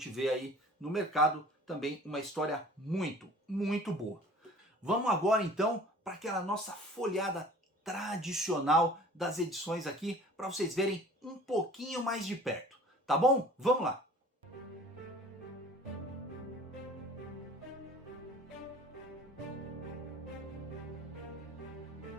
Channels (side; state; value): both; normal; correlation 0.47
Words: vê aí no mercado. Também uma história muito, muito boa. Vamos agora, então, para aquela nossa folhada tradicional das edições aqui, para vocês verem um pouquinho mais de perto. Tá bom? Vamos lá!